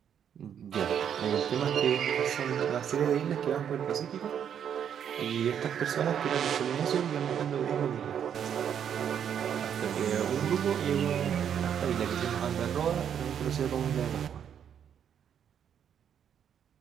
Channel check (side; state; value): left; quieter; 8.6 dB